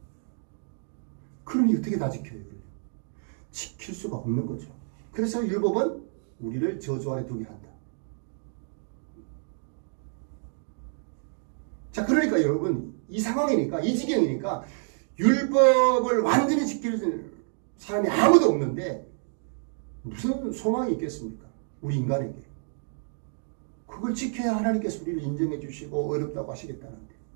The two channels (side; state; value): left; silent; 59 dB below the other